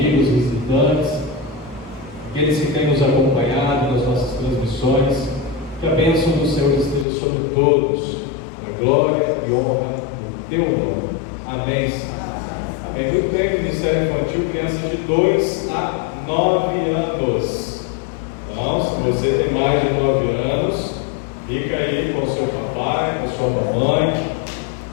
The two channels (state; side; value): drops out; right; at 7.1 s